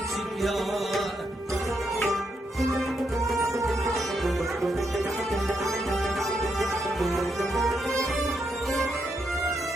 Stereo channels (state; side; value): normal; both; correlation 0.80